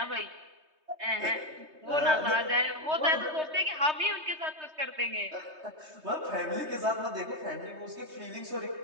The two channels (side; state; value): left; late; 3.2 ms